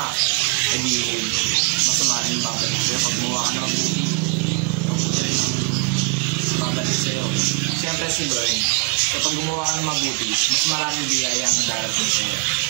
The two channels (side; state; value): left; quieter; 32.5 dB